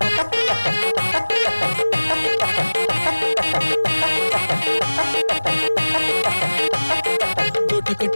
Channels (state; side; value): inverted; both; correlation -1.00